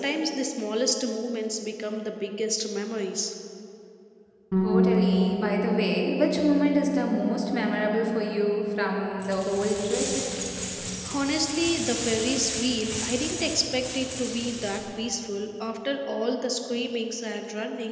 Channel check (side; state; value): both; identical; correlation 1.00